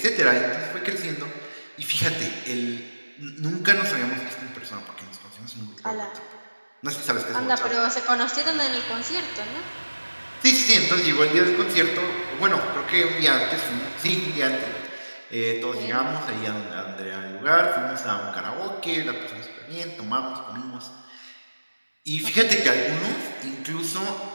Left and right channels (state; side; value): inverted; both; correlation -1.00